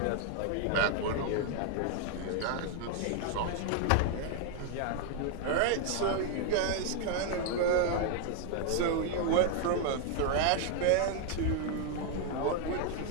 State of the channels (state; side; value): different; both; correlation 0.00